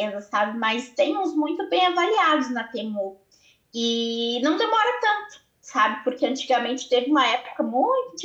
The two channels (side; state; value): both; identical; correlation 1.00